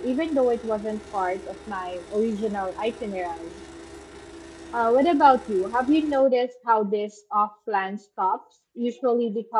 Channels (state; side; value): identical; both; correlation 1.00